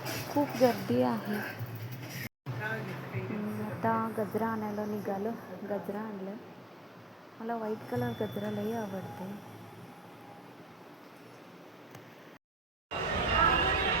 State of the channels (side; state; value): both; normal; correlation 0.62